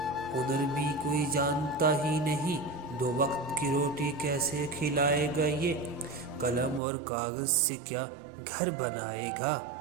ہنر بھی کوئی جانتا ہی نہیں، 2 وقت کی روٹی کیسے کھلائے گا یہ؟ قلم اور کاغذ سے کیا گھر بنائے گا،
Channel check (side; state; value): left; drops out; at 6.8 s